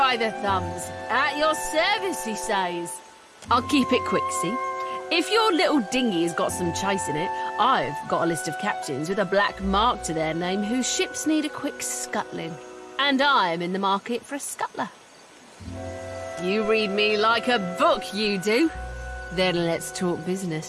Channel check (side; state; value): both; identical; correlation 1.00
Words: the thumbs. At your service, he says. I'll keep it quick, see? If your little dinghy has got some chase in it, I've got a list of captains with a black mark to their name whose ships need a quick scuttling. And I'm in the market for a scuttler. You read me like a book, you do. Then let's talk